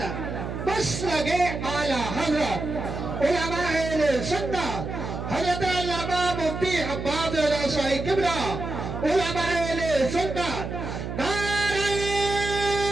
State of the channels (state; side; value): noise; right; hum, 6 dB below the sound